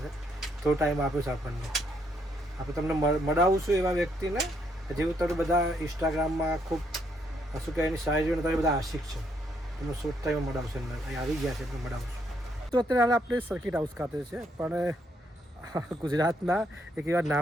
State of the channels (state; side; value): normal; both; correlation 0.73